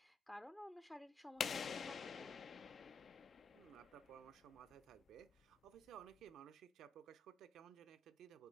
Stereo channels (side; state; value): right; quieter; 3.9 dB